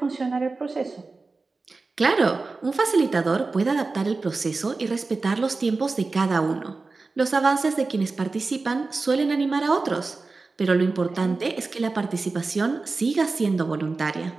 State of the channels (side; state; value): left; quieter; 3.8 dB